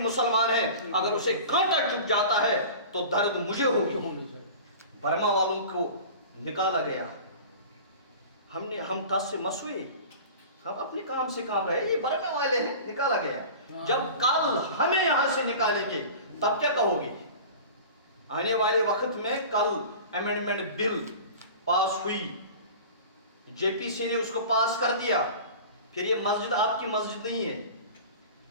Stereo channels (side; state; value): both; inverted; correlation -0.37